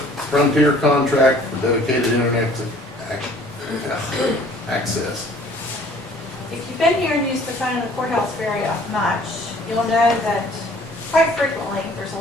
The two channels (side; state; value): both; normal; correlation 0.54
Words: contract for dedicated internet access. If you've been here and used the phone in the courthouse very much, you'll know that quite frequently, there's a